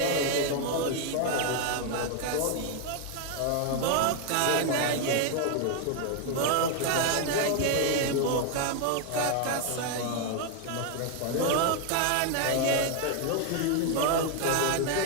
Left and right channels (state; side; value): different; both; correlation 0.00